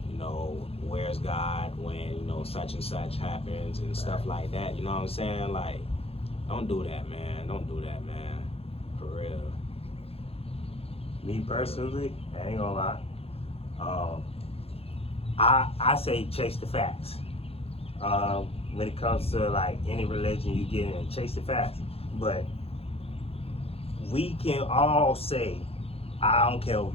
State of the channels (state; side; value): late; right; 0.28 ms